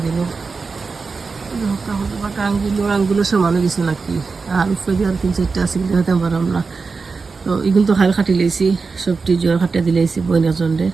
আঙ্গুলো সমানো গেছে নাকি, আর উপরে দিয়ে আর 3-4টা আছে কিন্তু হতে পারলাম না। তো এগুলো তো হাল খাটি লেছি, সবটি জ্বর খাটিয়ে দিলেছি বইনার জন্যে।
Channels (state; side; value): quieter; left; 4.5 dB